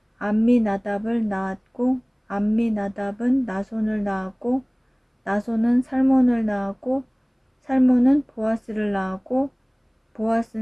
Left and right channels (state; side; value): identical; both; correlation 1.00